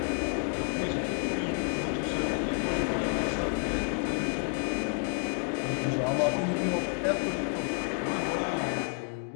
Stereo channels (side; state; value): right; quieter; 39.5 dB